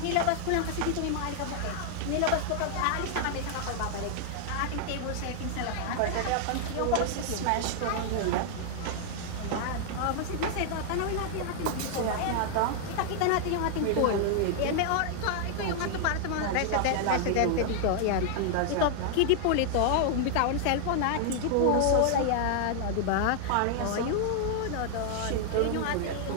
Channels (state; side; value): different; both; correlation -0.01